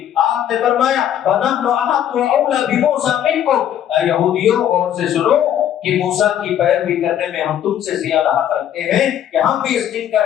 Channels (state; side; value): quieter; right; 10.4 dB